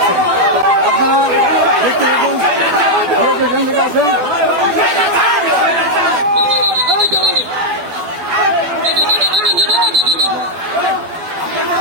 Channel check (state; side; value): late; left; 12 ms